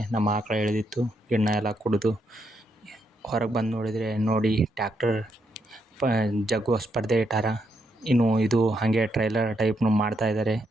ನಮ್ಮ ಆಕಳ ಎಳೆದಿತ್ತು, ಗಿಣ್ಣ ಎಲ್ಲ ಕುಡಿದು ಹೊರಗೆ ಬಂದು ನೋಡಿ ಟ್ಯಾಕ್ಟರ್ ಜಗ್ಗುವ ಸ್ಪರ್ಧೆ ಇಟ್ಟಾರ. ಇನ್ನು ಇದು ಹಾಗೆ ಟ್ರೈಲರ್ ಟೈಪ್ನು ಮಾಡ್ತಾಯಿದ್ದಾರೆ.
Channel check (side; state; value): both; normal; correlation 0.78